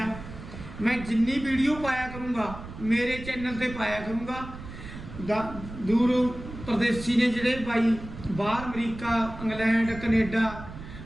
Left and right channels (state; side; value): noise; right; rumble, 12 dB below the sound